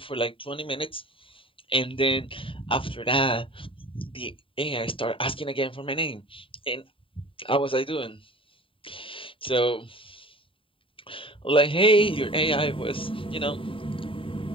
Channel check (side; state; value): right; late; 0.25 ms